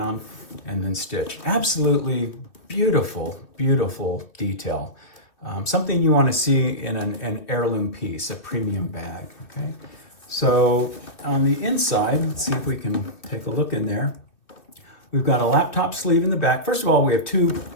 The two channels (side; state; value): right; late; 2.7 ms